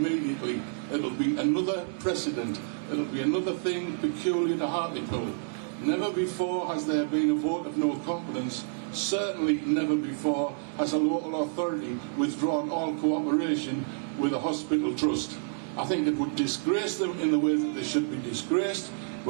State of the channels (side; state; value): left; silent; digital silence